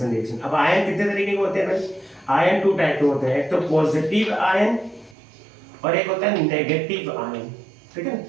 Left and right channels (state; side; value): drops out; left; at 5.2 s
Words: रिएक्शन। अब आयन कितने तरीके के होते हैं भाई? आयन 2 टाइप के होते हैं, एक तो पॉजिटिव आयन और एक होता है नेगेटिव आयन, ठीक है।